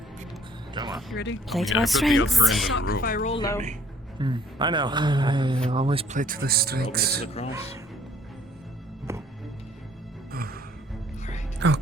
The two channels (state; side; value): normal; both; correlation 0.60